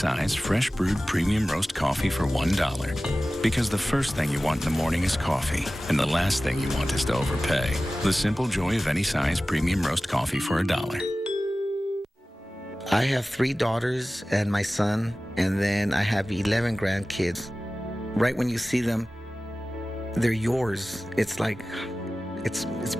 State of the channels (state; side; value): normal; both; correlation 0.96